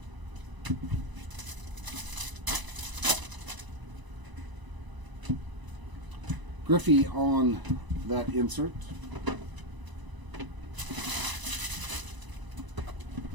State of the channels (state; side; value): late; left; 1.0 ms